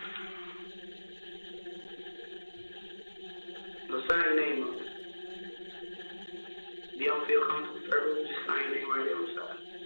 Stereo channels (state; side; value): inverted; both; correlation -1.00